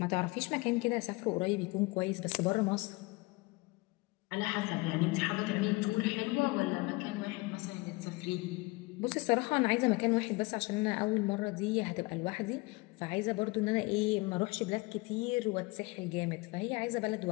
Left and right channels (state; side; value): quieter; right; 24.6 dB